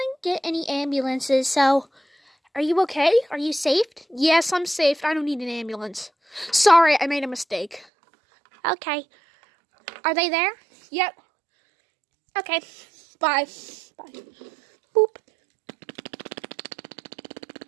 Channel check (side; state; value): left; drops out; at 7.9 s